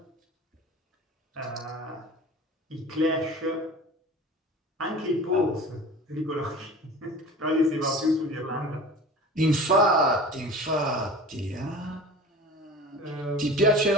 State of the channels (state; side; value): normal; both; correlation 0.38